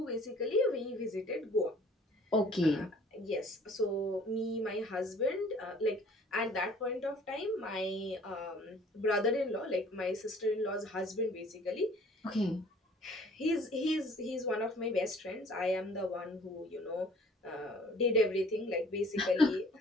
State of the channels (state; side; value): normal; both; correlation 0.53